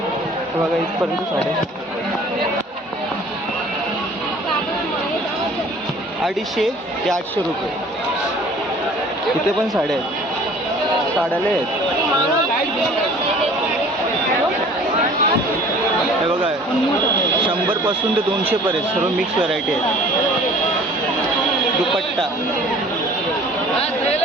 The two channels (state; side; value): normal; both; correlation 0.49